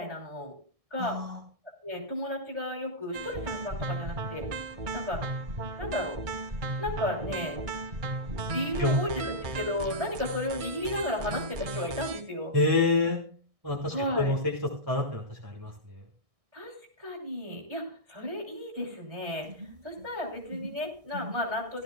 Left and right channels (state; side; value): late; left; 1.6 ms